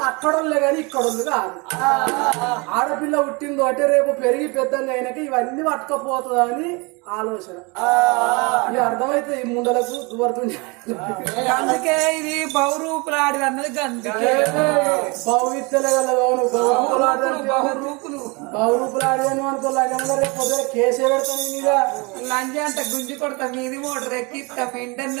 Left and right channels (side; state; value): left; quieter; 28.4 dB